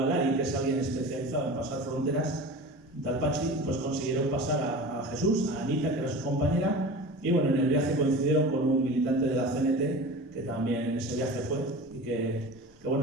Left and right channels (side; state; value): both; normal; correlation 0.35